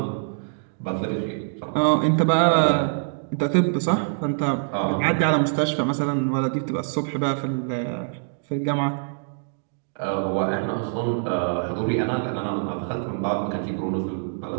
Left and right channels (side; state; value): left; silent; digital silence